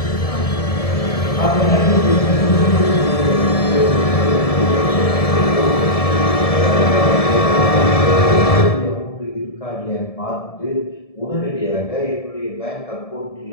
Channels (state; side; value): late; right; 1.7 ms